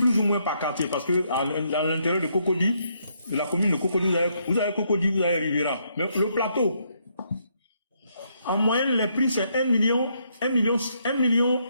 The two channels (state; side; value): inverted; both; correlation -0.74